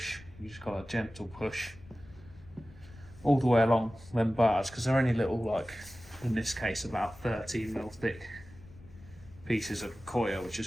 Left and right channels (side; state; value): left; noise; rumble, 21 dB below the sound